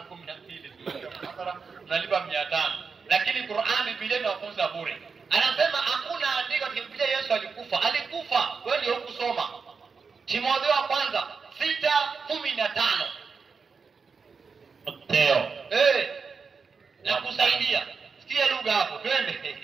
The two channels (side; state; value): left; quieter; 5.2 dB